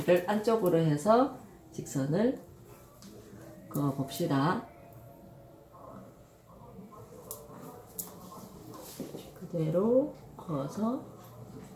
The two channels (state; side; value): identical; both; correlation 1.00